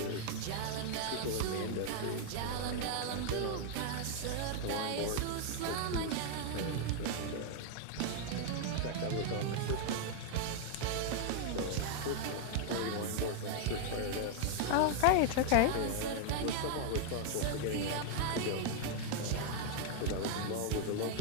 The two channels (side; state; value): both; different; correlation 0.00